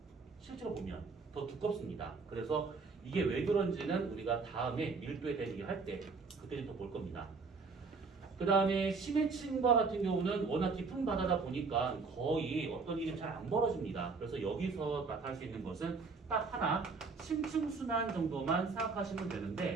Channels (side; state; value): left; quieter; 4.5 dB